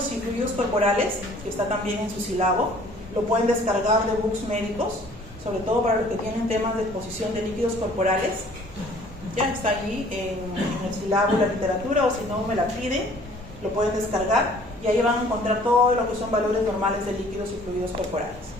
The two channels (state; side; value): normal; both; correlation 0.54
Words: y fluidos corporales, que está también en su sílabo. Lo pueden descargar de books médicos, sobre todo para los que tienen temas de exposición de líquidos corporales. Ya está allí en el sílabo de la literatura, o si no me la piden, lo pueden descargar y ahí van a encontrar todo lo que son valores normales de líquidos y fluidos corporales.